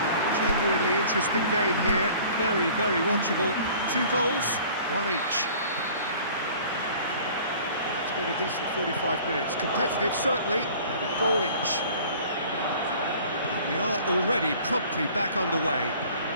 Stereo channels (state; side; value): inverted; both; correlation -0.49